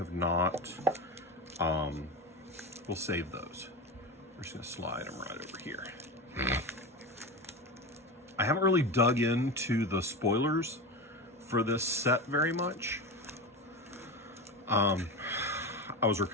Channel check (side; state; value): both; normal; correlation 0.23